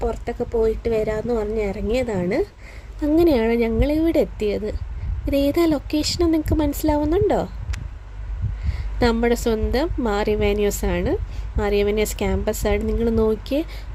പുറത്തൊക്കെ പോയിട്ട് വരാമെന്ന് പറഞ്ഞ് ഇറങ്ങിയതാണ്. അങ്ങനെയാണ് ഞങ്ങളിവിടെ എത്തിയത്. ഇതേതാ ലൊക്കേഷനെന്ന് നിങ്ങൾക്ക് മനസ്സിലാവുന്നുണ്ടോ? നമ്മുടെ സ്വന്തം മാറിവാനിയോസാണ്. മാറിവാനിയോസ് ക്യാമ്പസാണ്. നിങ്ങൾ നോക്കിയേ,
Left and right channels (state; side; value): identical; both; correlation 1.00